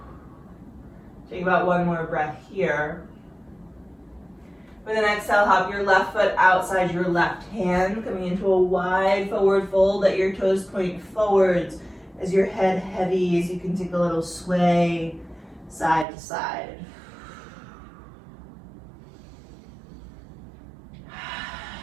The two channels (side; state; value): left; drops out; at 16.1 s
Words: Take about one more breath here. With an exhale, hop your left foot outside your left hand, coming into a wide forward fold. Let your toes point forwards as your head heavy, as you can take a little sway side to side.